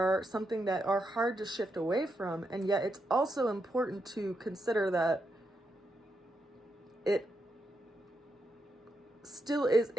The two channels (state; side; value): normal; both; correlation 0.83